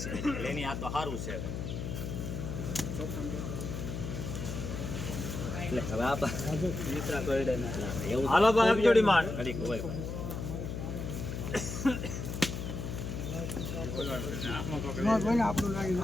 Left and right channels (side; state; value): left; noise; hum, 5 dB below the sound